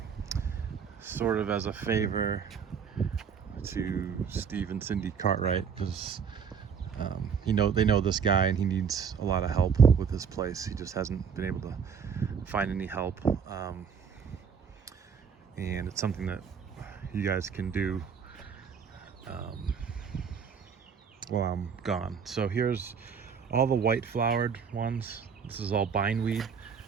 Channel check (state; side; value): quieter; left; 6.7 dB